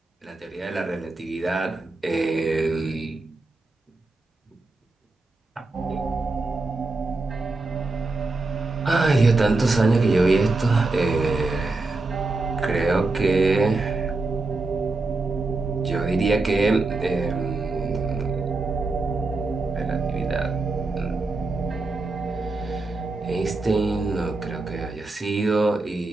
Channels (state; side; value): quieter; left; 3.4 dB